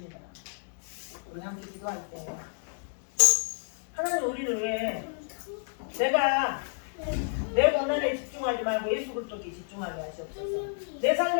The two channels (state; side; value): silent; right; 58 dB below the other